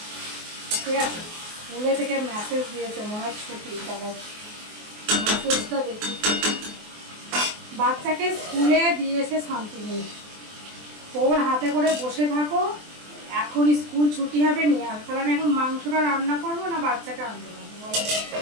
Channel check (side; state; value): left; late; 24 ms